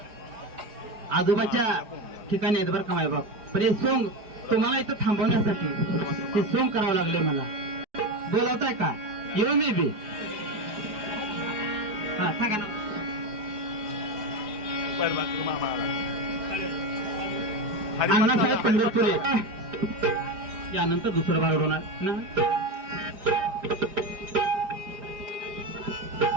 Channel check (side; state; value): left; late; 4.8 ms